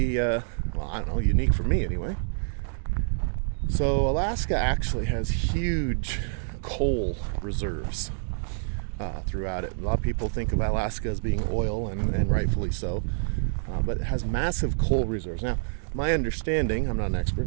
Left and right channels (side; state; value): left; silent; digital silence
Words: well, I don't know, unique for me anyway. So Alaska actually has huge coal reserves throughout it. A lot of people think of Alaska as being oil, and rightfully so, but it has massive coal reserves. Now, my understanding, I'm not an